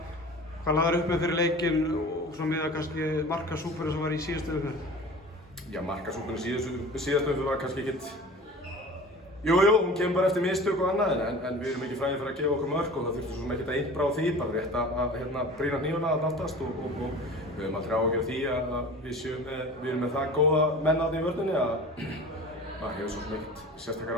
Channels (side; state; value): both; normal; correlation 0.39